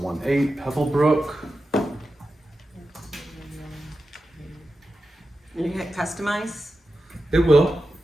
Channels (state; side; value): normal; both; correlation 0.91